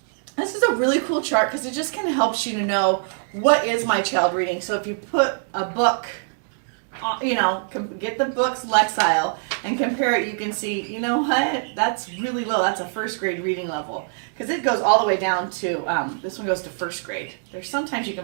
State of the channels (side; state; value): left; silent; digital silence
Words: this is a really cool chart because it just kind of helps you to know what is my child reading. So if you put a book, get the book's Lexile and compare it, you can see, you know what, that's really low. That's a first grade reading level because it goes all the way down to, this one goes to first grade. There's sometimes you